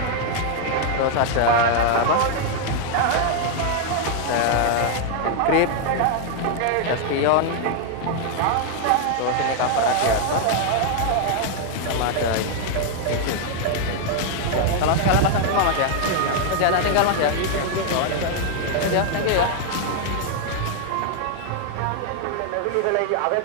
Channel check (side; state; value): both; different; correlation 0.00